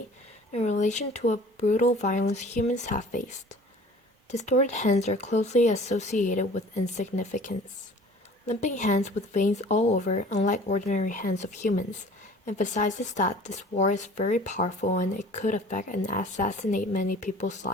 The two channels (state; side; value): normal; both; correlation 0.47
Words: in relation to a brutal violence humans have faced. Distorted hands are closely associated with insignificance. Limping hands with veins all over, unlike ordinary hands of humans, emphasizes that this war is very powerful and it could affect and assassinate many people's